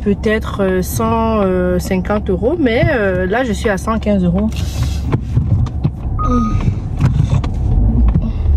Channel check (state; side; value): identical; both; correlation 1.00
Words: 150 €, mais là je suis à 115 €.